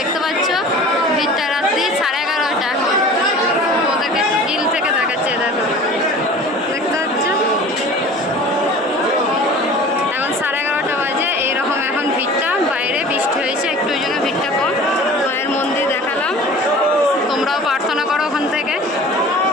পাচ্ছ, ভিড়টা রাত্রি 11:30 এখন, ওদেরকে গিল থেকে দেখাচ্ছে। দেখো দেখতে পাচ্ছ, এখন 11:30 বাজে, এইরকম এখন ভিড়টা। বাইরে বৃষ্টি হয়েছে একটু, ওই জন্য ভিড়টা কম। মায়ের মন্দির দেখালাম, তোমরাও প্রার্থনা করো ওখান থেকে,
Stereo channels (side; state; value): both; normal; correlation 0.42